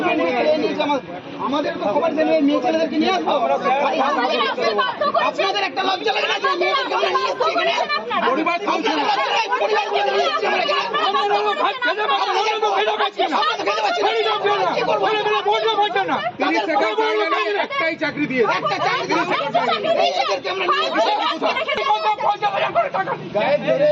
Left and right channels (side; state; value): both; identical; correlation 1.00